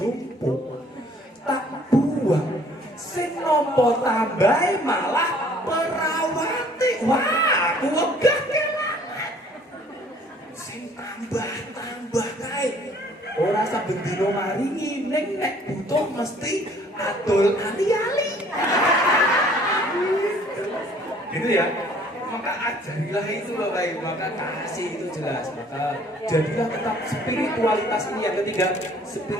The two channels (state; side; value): normal; both; correlation 0.57